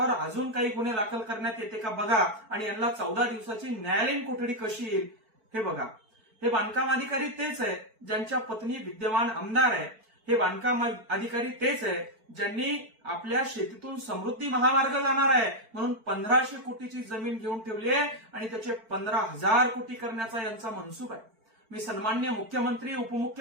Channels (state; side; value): late; left; 4.5 ms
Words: अजून काही गुन्हे दाखल करण्यात येते का बघा आणि यांना 14 दिवसाची न्यायालयीन कोठडी कशी येईल हे बघा। हे बांधकाम अधिकारी तेच आहे ज्यांच्या पत्नी विद्यमान आमदार आहे। हे बांधकाम अधिकारी तेच आहे ज्यांनी आपल्या शेतीतून समृद्धी महामार्ग जाणार आहे म्हणून 1500 कोटीची जमीन घेऊन ठेवली आहे आणि त्याचे 15,000 कोटी करण्याचा यांचा मनसूब आहे। मी सन्माननीय मुख्यमंत्री